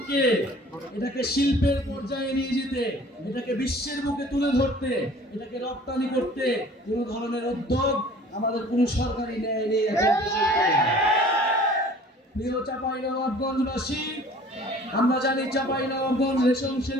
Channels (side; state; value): both; normal; correlation 0.49